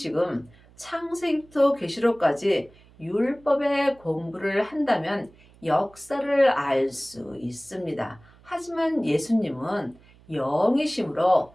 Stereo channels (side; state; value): right; noise; hum, 27 dB below the sound